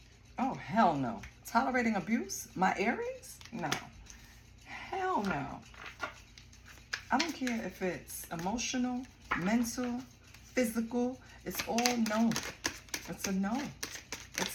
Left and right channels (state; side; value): identical; both; correlation 1.00